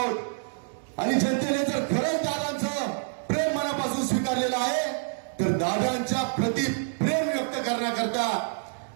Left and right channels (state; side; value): silent; left; digital silence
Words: आणि जनतेने जर खरंच दादांचं प्रेम मनापासून स्वीकारलेलं आहे, तर दादांच्या प्रति प्रेम व्यक्त करण्याकरता,